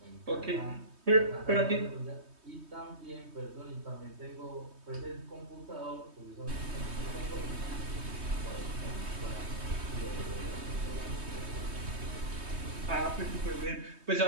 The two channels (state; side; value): late; left; 3.2 ms